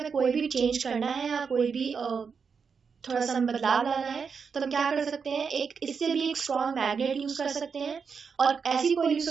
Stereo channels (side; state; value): left; quieter; 5.9 dB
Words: कोई भी चेंज करना है या कोई भी थोड़ा सा बदलाव लाना है तो हम क्या कर सकते हैं, इससे भी एक स्ट्रॉन्ग मैग्नेट यूज कर सकते हैं और ऐसी कोई यूज